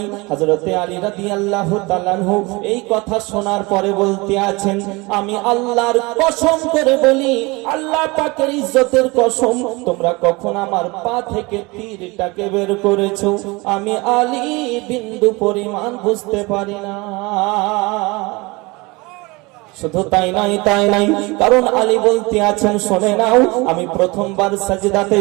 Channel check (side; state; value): left; quieter; 24.8 dB